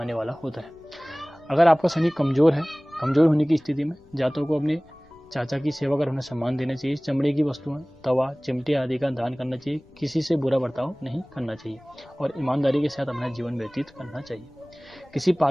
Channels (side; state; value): left; noise; rumble, 27 dB below the sound